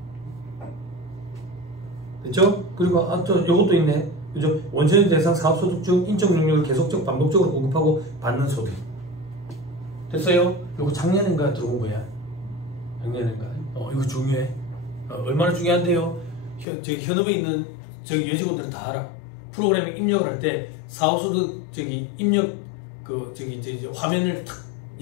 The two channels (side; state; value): right; drops out; at 16.7 s